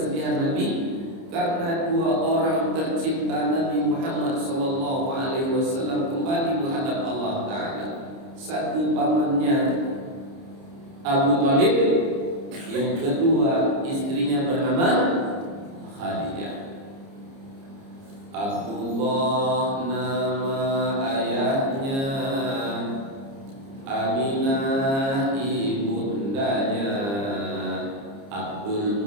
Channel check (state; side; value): late; left; 30 ms